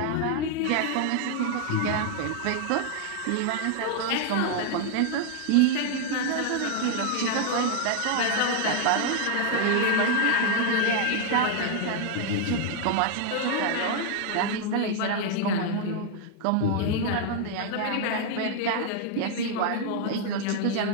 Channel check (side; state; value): both; different; correlation 0.00